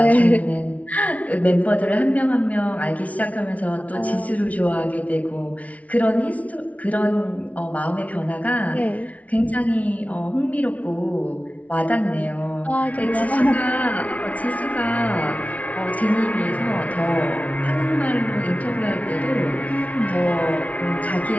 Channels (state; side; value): late; right; 0.068 ms